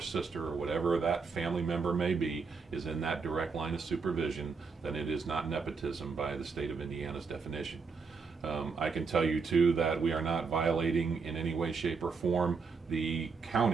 or whatever that family member may be is in that direct line of supervision, then it is not nepotism by the state of Indiana's definition. I can tell you too that we are not violating in any way, shape, or form the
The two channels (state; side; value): quieter; left; 5.1 dB